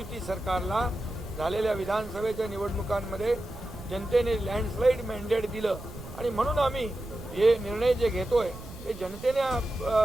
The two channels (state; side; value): noise; right; rumble, 14 dB below the sound